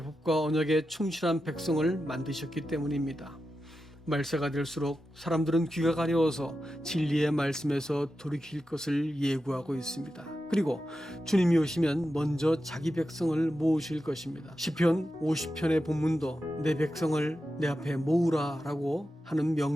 법과 언약에 충실한 백성을 만드셨기 때문입니다. 말세가 될수록 사람들은 귀가 가려워서 진리의 말씀에서 돌이킬 것을 예고하고 있습니다. 그리고 주님이 오시면 먼저 자기 백성을 모으실 것입니다. 시편 50편의 본문도 내 백성을 내 앞에 모으라 라고 하는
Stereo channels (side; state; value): both; normal; correlation 0.90